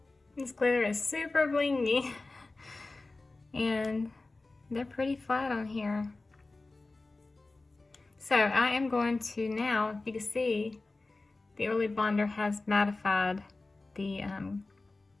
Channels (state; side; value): quieter; right; 3.3 dB